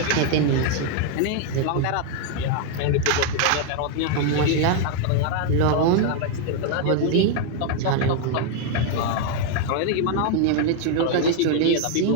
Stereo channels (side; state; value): both; different; correlation 0.00